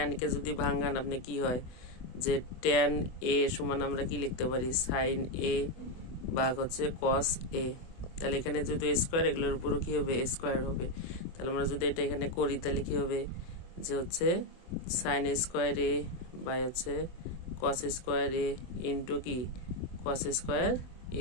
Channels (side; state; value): right; late; 24 ms